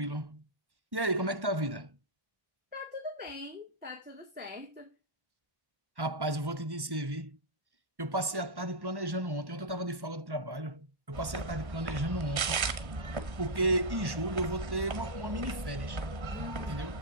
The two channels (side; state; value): left; late; 1.1 ms